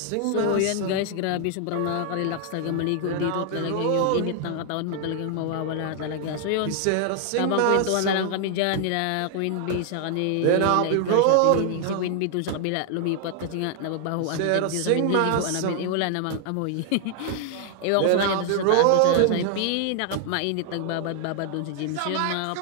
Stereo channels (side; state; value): both; different; correlation 0.00